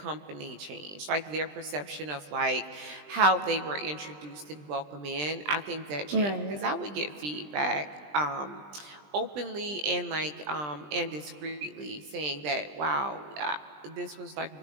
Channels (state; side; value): late; left; 20 ms